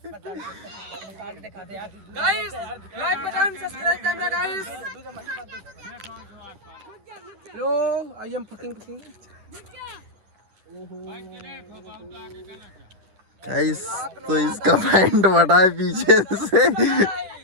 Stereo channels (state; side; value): late; left; 10 ms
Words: guys like button subscribe करना गाइस। लो आई एम फकिंग गाइस तो इसका पैंट फटा है पीछे से।